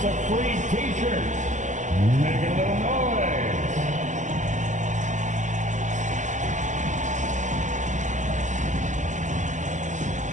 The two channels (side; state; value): left; late; 0.35 ms